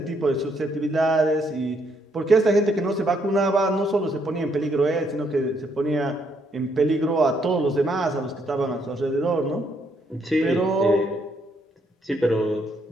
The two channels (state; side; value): normal; both; correlation 0.72